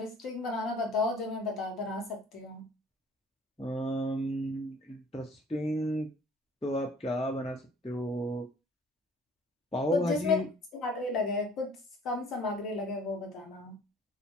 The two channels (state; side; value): normal; both; correlation 0.52